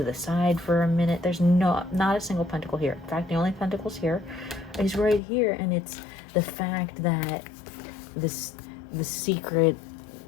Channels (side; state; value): right; drops out; at 5.2 s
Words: the side for a minute. There's not a single pentacle here. In fact, the only pentacles here is right here, and it's the fact that the secret